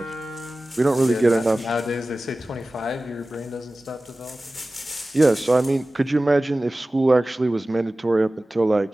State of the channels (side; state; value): both; normal; correlation 0.97